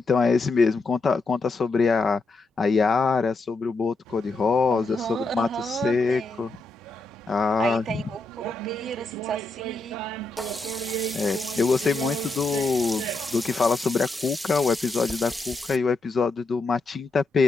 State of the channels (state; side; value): quieter; right; 3.3 dB